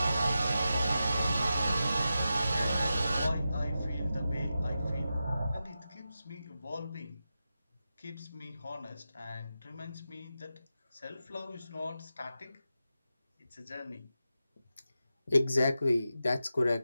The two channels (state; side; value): inverted; both; correlation -0.91